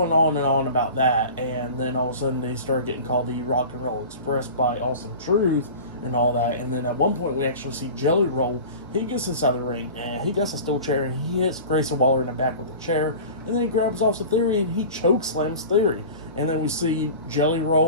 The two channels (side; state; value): both; inverted; correlation -0.37